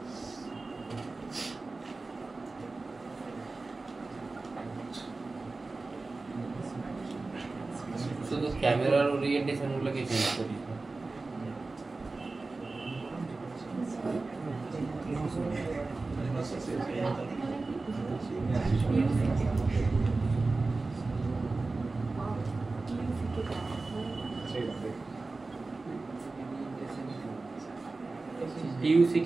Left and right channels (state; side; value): quieter; left; 3.5 dB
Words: শুধু ক্যামেরার ওরিয়েন্টেশন গুলোকে চেঞ্জ করিস না। টিইউসি